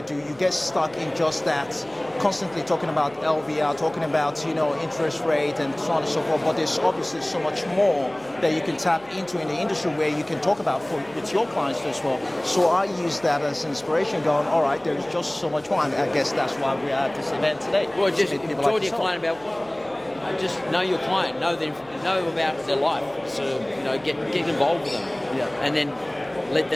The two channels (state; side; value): noise; right; hum, 27 dB below the sound